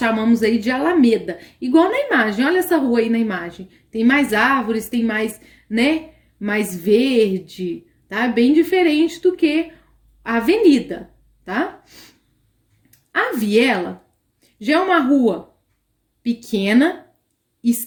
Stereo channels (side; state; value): both; identical; correlation 1.00